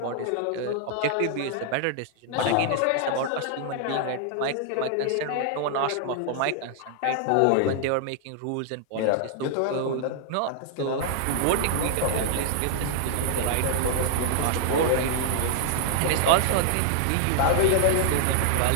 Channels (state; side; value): different; both; correlation 0.00